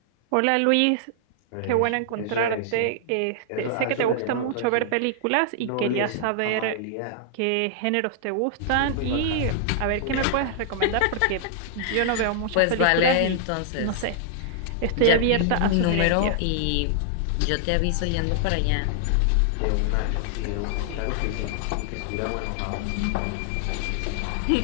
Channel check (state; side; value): different; both; correlation -0.01